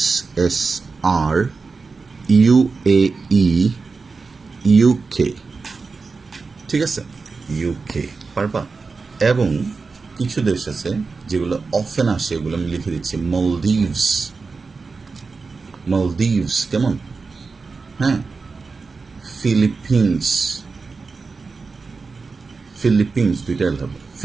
ইউএই, ইউকে, ঠিক আছে, ইউকে পারবা। এবং কিছু দেশ আছে যেগুলো অফেন আসে, এগুলো আমি লিখে দিচ্ছি, মলদ্বীপস, মলদ্বীপস, কেমন? হ্যাঁ, ফিলিপিন্স, ফিলিপিন্স দুইটা হবে,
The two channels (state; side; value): quieter; left; 4.4 dB